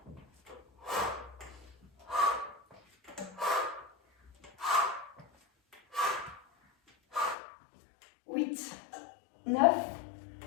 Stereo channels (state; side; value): drops out; right; at 7.4 s